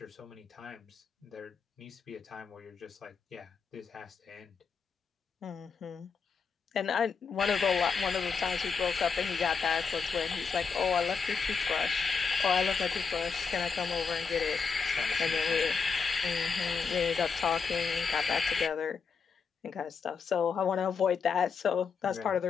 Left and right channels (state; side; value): quieter; right; 5.5 dB